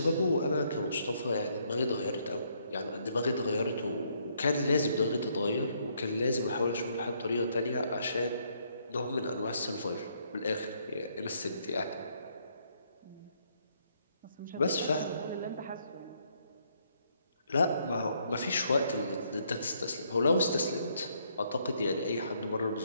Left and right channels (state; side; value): inverted; both; correlation -0.71